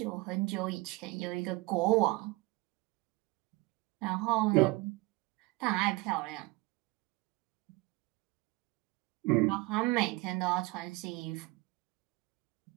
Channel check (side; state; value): left; quieter; 22.7 dB